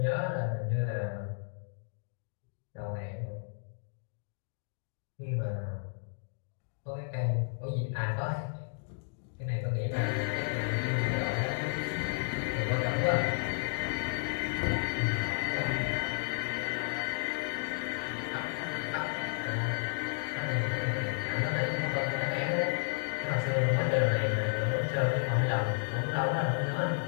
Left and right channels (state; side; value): silent; right; digital silence